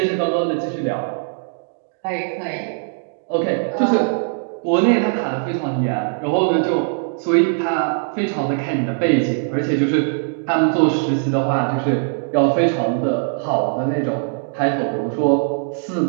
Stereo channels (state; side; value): silent; left; digital silence